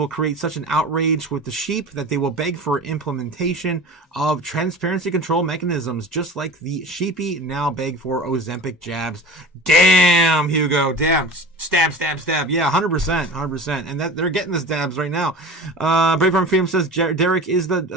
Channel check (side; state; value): both; normal; correlation 0.35